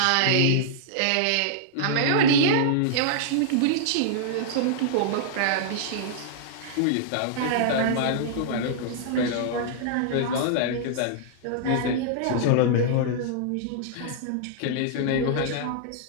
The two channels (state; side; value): different; both; correlation -0.02